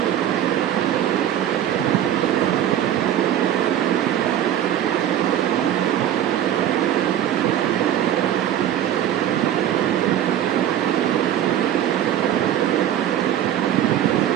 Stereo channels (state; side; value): quieter; left; 11.1 dB